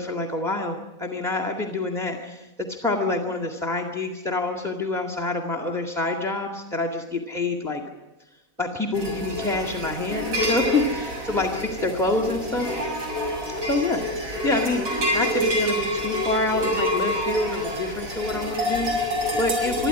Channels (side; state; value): left; late; 4.1 ms